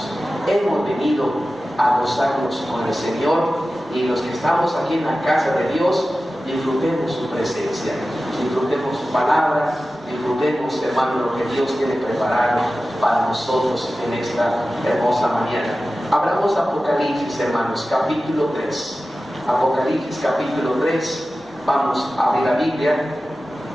Hemos venido a gozarnos con el Señor, y los que estamos aquí en la casa de Dios, disfrutemos su presencia, disfrutemos su palabra, disfrutemos, hermanos, lo que Dios tiene preparado para nosotros en esta hermosa mañana. Abramos Apocalipsis, hermanos, capítulo 3. Apocalipsis capítulo 3. Vamos a abrir la Biblia.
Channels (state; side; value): normal; both; correlation 0.95